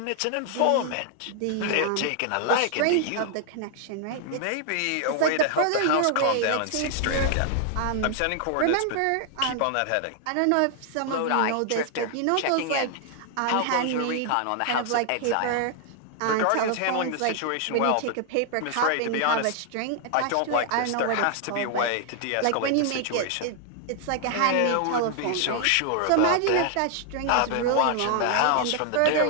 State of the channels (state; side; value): different; both; correlation 0.00